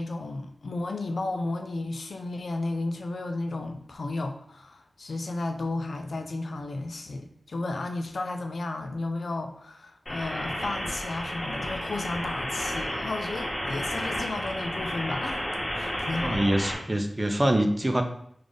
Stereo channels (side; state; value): both; normal; correlation 0.96